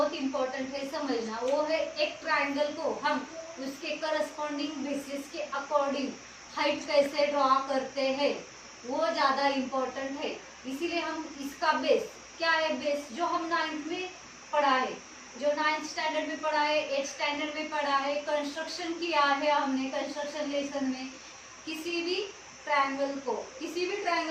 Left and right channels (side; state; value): both; identical; correlation 1.00